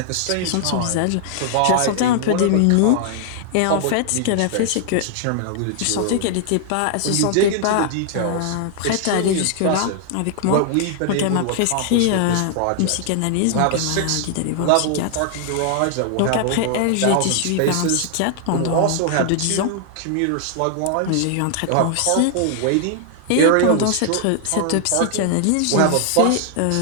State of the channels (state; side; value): different; both; correlation 0.00